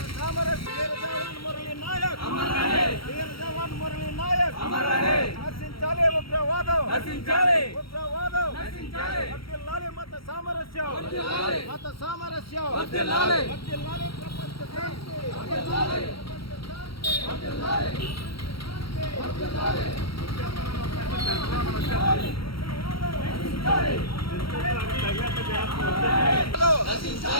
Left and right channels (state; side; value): late; right; 0.75 ms